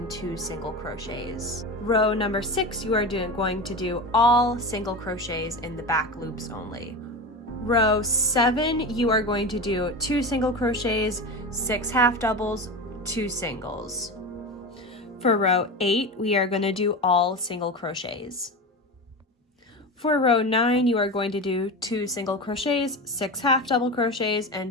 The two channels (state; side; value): normal; both; correlation 0.24